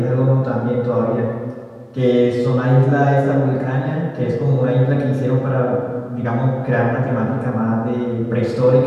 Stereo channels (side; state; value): both; identical; correlation 1.00